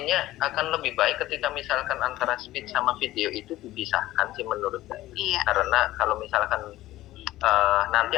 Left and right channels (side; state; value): right; quieter; 15.9 dB